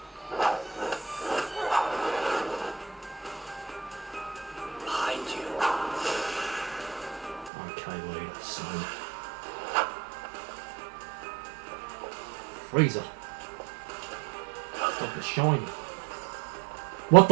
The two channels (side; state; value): left; drops out; at 7.5 s